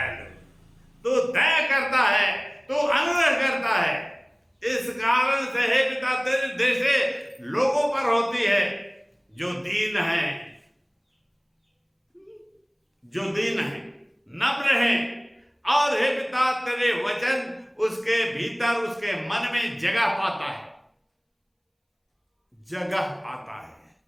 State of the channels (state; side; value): identical; both; correlation 1.00